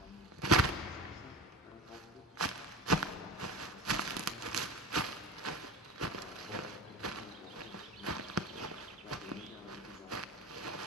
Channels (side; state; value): both; normal; correlation 0.31